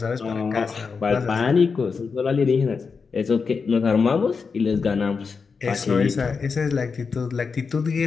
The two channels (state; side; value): quieter; right; 5.2 dB